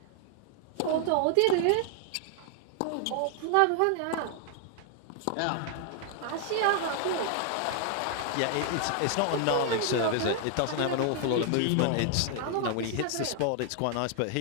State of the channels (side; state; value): both; different; correlation 0.00